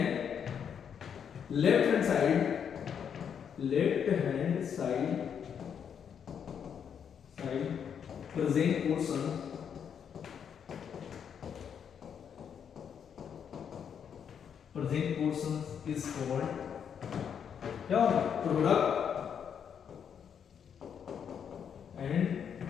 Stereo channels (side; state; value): right; quieter; 7.8 dB